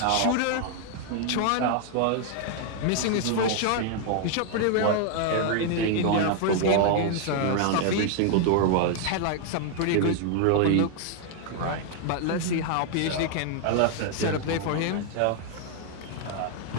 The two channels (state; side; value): different; both; correlation 0.00